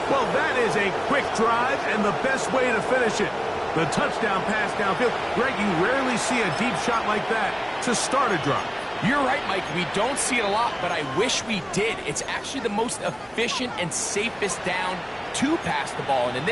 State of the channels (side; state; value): both; identical; correlation 1.00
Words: Well, that is a quick drive and the best way to finish it. The touchdown pass downfield. Greg, you rarely see a deep shot like that to start a drive. You're right, Mike. We don't see it a lot, but I wish we did. It's actually the most efficient and safest down to pass the ball. And in